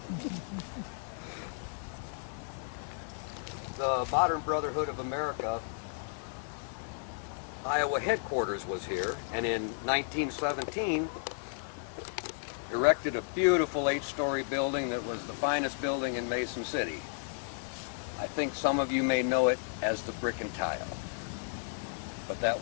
The Modern Brotherhood of America Iowa headquarters was here, and in 1917 erected a beautiful 8-story building that was the finest building in Mason City. I think some of you may know it as the Brick and Tile. But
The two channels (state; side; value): silent; right; digital silence